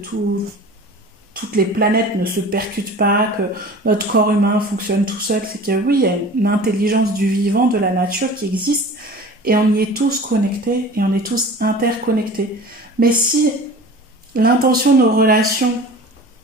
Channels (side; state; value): both; normal; correlation 0.40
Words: les planètes ne se percutent pas, que notre corps humain fonctionne tout seul, c'est que oui, il y a une intelligence du vivant, de la nature qui existe, et on y est tous connectés, et on est tous interconnectés. Mais si l'intention de nos relations,